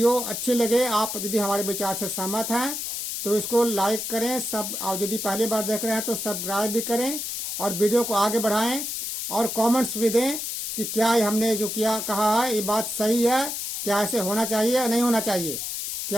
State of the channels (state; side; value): noise; left; hiss, 4 dB below the sound